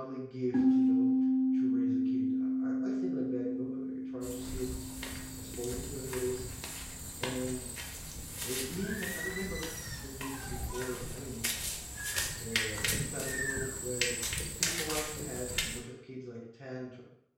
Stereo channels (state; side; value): identical; both; correlation 1.00